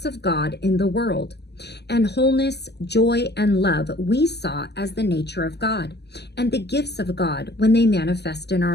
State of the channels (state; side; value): late; right; 0.49 ms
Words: of God in the world, and wholeness, joy, and love we saw as the nature of God and the gifts of God when they manifest in